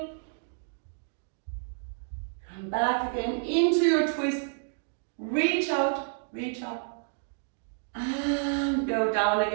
Come back again into your twist. Reach out, reach up. And go down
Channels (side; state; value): left; silent; digital silence